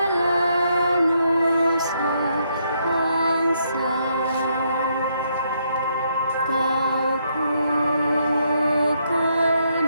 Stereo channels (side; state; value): both; inverted; correlation -0.74